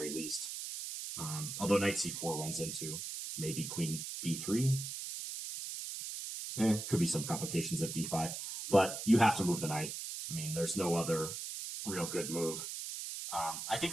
least. Although knight c4 runs into maybe queen b3. Could be some complications of d5, but you have to move the knight. I mean, there's no other real good move. I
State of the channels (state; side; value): noise; right; hiss, 6 dB below the sound